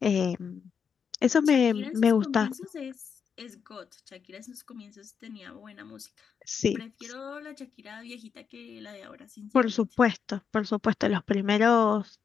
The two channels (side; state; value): right; quieter; 6.7 dB